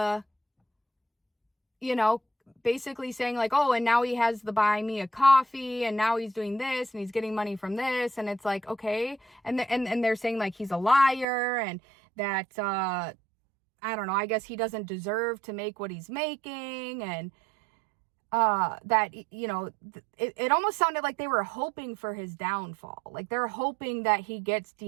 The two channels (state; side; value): drops out; left; at 11.2 s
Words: basically saying like, oh, and now he has the buy me a coffee, and now he's doing this, and he's getting money from this. And it's like, okay. And they're saying like he's a liar, and that, I don't know, I guess he doesn't deserve to make what he's making. And that, it almost sounded like they were hoping for his downfall. Like they're hoping that he gets